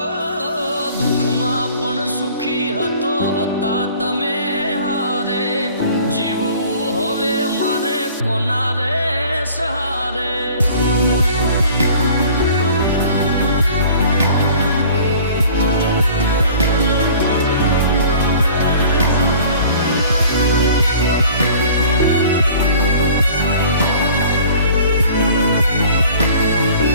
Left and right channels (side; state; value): both; inverted; correlation -0.48